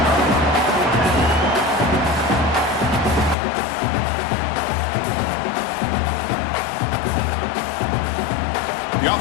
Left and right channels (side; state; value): right; drops out; at 3.4 s